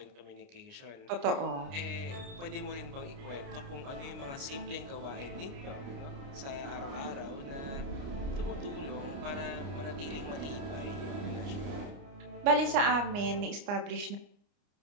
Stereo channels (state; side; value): late; left; 29 ms